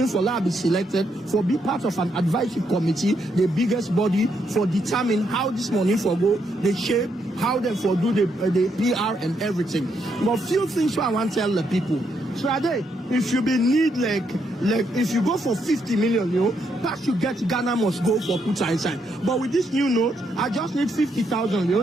for that be selected for be part of an advisory committee, the biggest body for determine how this money for go, the shape, how they for do the PR and everything. But few things I want to tell the people. So if you be need like if you go for 50 million, you know, pass you get Ghana must go for put inside. But with this new note, I just need 50,000, you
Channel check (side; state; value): both; normal; correlation 0.77